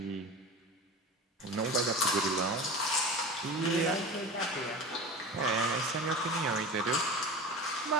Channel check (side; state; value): both; normal; correlation 0.31